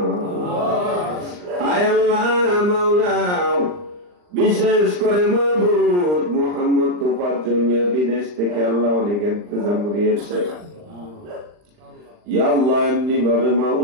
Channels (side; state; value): left; late; 39 ms